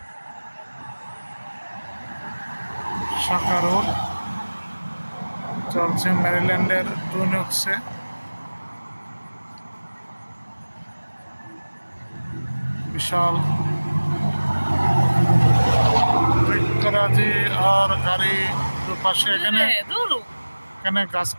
শাখা রোড চলছে ম্যারিল্যান্ডের টুইন ওকসে। বিশাল বৃক্ষরাজি আর গাড়ি দুপাশে। এখানে গাছ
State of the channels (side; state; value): both; inverted; correlation -1.00